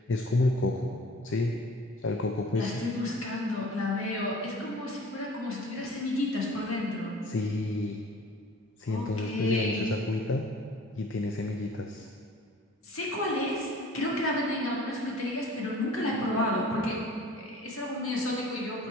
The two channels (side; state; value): both; normal; correlation 0.47